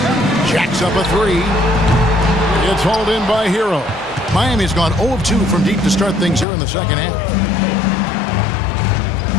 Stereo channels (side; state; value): right; drops out; at 6.5 s